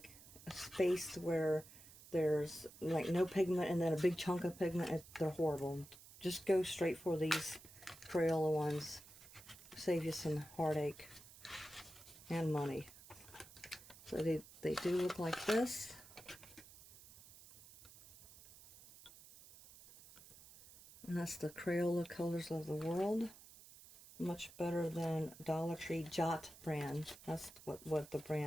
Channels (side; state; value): right; noise; hiss, 19 dB below the sound